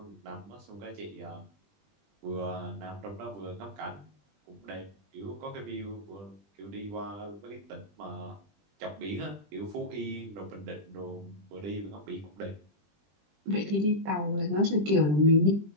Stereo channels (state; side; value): late; left; 20 ms